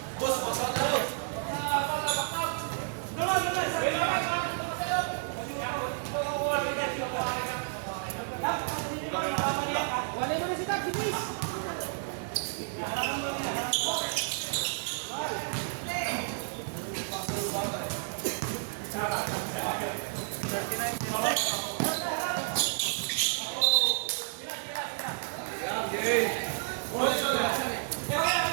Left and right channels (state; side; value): silent; left; digital silence